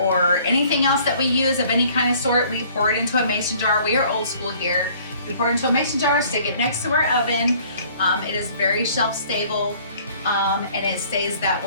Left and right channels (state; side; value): inverted; both; correlation -0.56